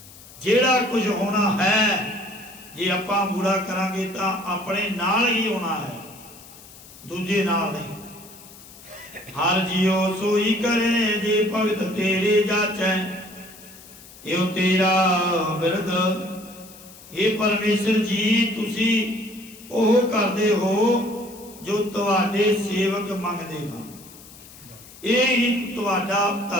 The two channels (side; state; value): left; noise; hiss, 20 dB below the sound